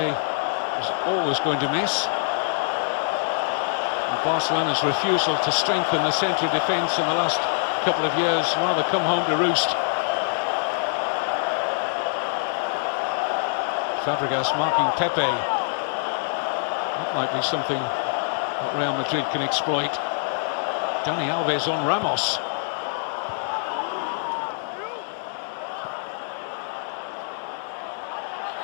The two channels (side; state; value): right; silent; 62 dB below the other